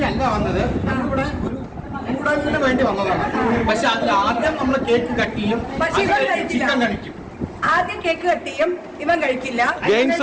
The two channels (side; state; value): both; identical; correlation 1.00